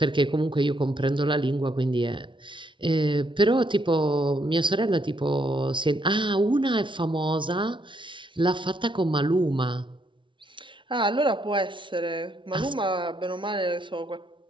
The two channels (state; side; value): late; left; 0.24 ms